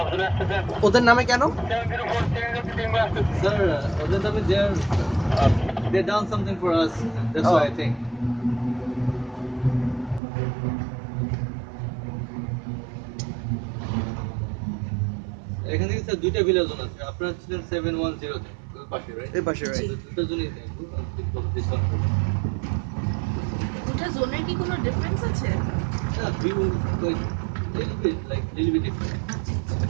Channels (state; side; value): drops out; left; at 10.2 s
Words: ওদের নামে কেন? স্যার, ওদের নামে they done something for us. That's Oh. why I think. এখান থেকে স্যার দুইটা ভিলা জোন আছে। আপনারা ছিলেন 710 তে, ওই পাশে, রাইট? এই পাশে, রাইট। দুটো জোনই দেখবো। দুটা জোনের কি কোনো ডিফারেন্স আছে? Yeah, view like little bit different.